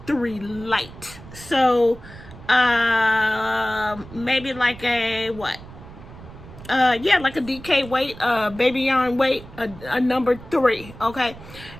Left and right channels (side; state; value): right; noise; rumble, 17 dB below the sound